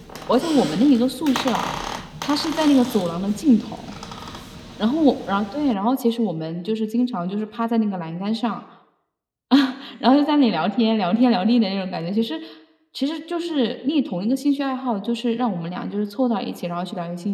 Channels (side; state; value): both; identical; correlation 1.00